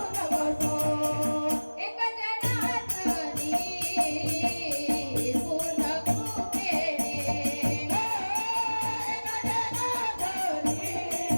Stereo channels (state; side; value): inverted; both; correlation -1.00